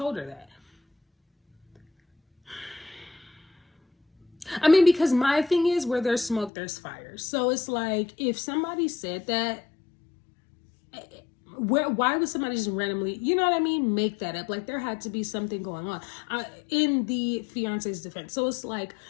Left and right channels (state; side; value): drops out; right; at 6.5 s